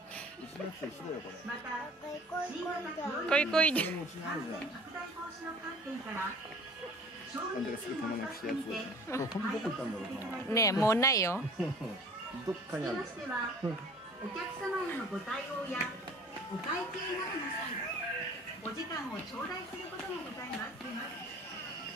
しなくてしろよこれ。こいこいで。これもうちにあるじゃん。あんたがすぐ玉なくしたやつ。これ本当どこ行ったんだろうな。ねえ、もうないよ。どっかにあるよ。お客様へのご対応やお会計などの際、お時間を頂戴することがございます。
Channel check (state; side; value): normal; both; correlation 0.47